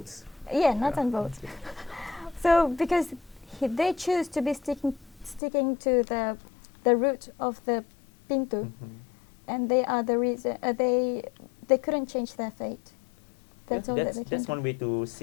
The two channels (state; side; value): drops out; right; at 5.4 s